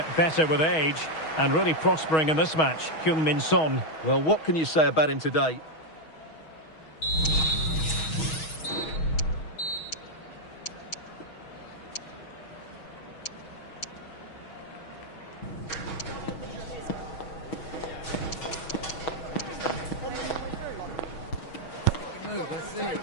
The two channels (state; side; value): late; right; 6.3 ms